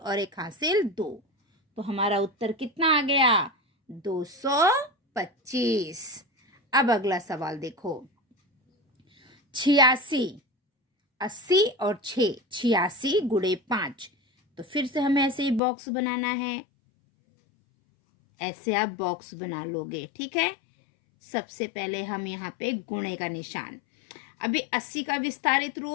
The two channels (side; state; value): right; drops out; at 15.6 s